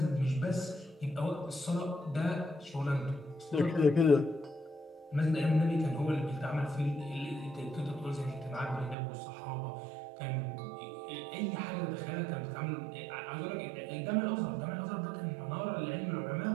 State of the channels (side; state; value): left; drops out; at 9.0 s